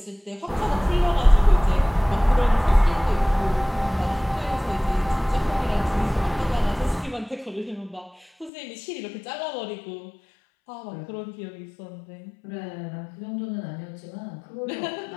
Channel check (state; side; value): drops out; right; at 8.5 s